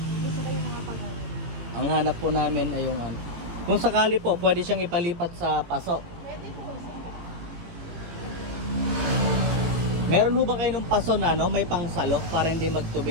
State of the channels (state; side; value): late; left; 18 ms